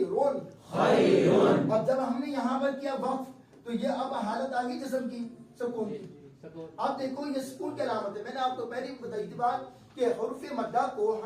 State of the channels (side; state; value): both; identical; correlation 1.00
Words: خیرون. اب جب ہم نے یہاں پر کیا وقف تو یہ اب حالت آ گئی جسم کی، سکون کی. اب دیکھو یہ سکون کی علامت ہے. میں نے آپ کو پہلے بتائی تھی بات کہ حروف مدہ کو